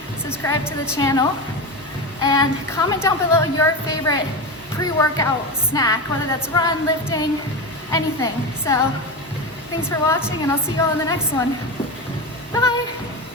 subscribe to the channel, and comment down below your favorite pre-workout snack, whether that's run, lifting, anything. So thanks for watching, and I'll see you all in the next one. Bye!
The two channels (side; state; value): both; normal; correlation 0.20